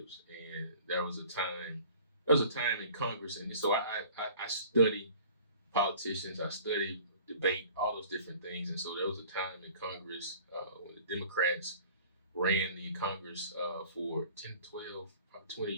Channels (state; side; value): inverted; both; correlation -0.48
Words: And there was a time in Congress, and so I study politicians, I study debate, all those different things. And so there was a time in Congress when the Democrats ran the Congress for 10, 12, probably 20